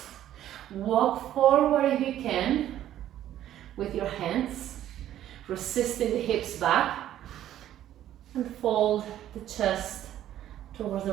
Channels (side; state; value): left; quieter; 12.1 dB